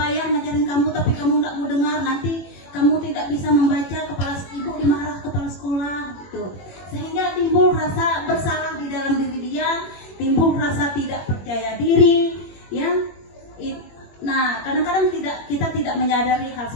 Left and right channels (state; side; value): late; right; 21 ms